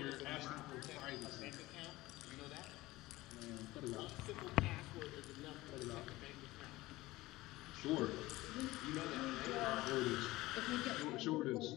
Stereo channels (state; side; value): quieter; right; 18.7 dB